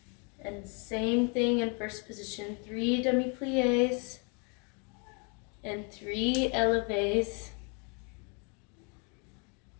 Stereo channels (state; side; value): quieter; right; 35.5 dB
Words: And same thing in 1st position, 3 demi-pliés and 3 élevés.